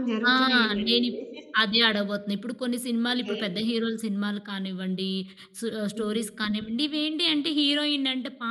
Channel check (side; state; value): both; identical; correlation 1.00